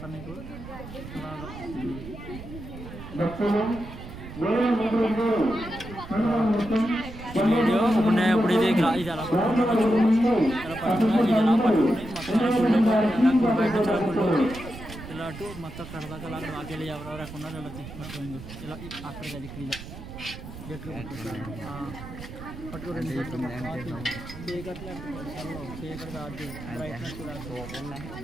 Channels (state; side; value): noise; right; rumble, 12 dB below the sound